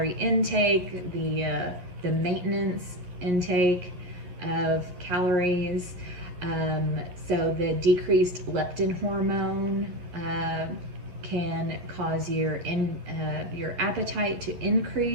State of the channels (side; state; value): left; late; 11 ms